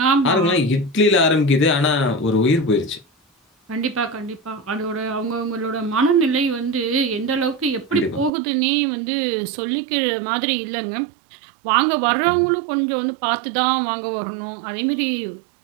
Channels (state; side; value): drops out; left; at 8.3 s